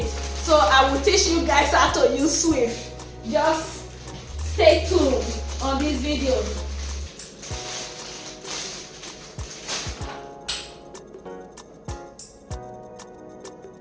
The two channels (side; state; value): both; identical; correlation 1.00